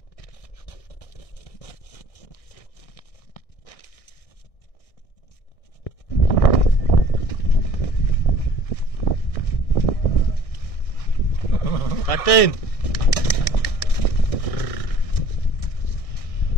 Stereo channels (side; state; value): right; late; 1.6 ms